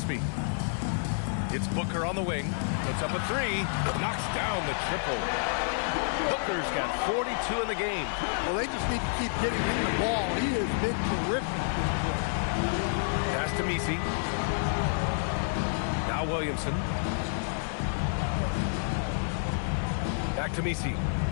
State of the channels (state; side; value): silent; right; 58 dB below the other